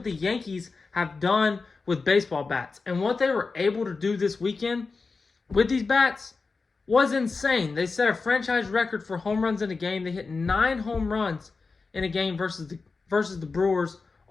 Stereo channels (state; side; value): quieter; right; 4.3 dB